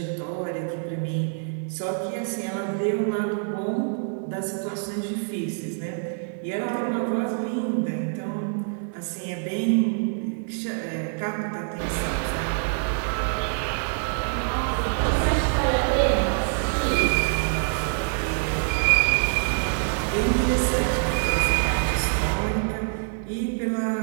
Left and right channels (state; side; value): silent; left; 61 dB below the other